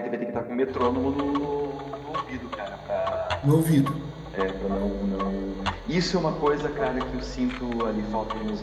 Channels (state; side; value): identical; both; correlation 1.00